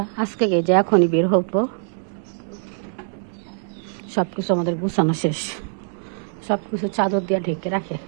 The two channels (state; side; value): silent; left; digital silence